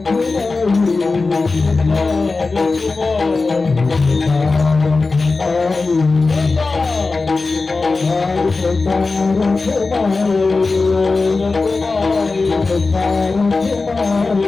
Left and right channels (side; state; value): right; quieter; 3.8 dB